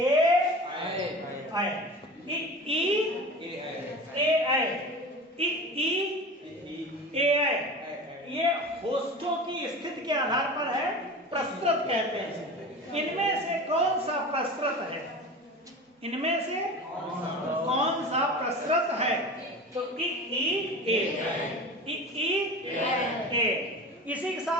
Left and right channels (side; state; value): both; normal; correlation 0.34